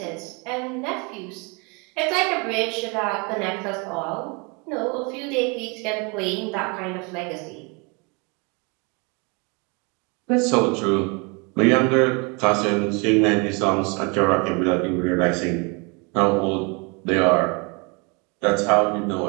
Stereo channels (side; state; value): left; quieter; 31.1 dB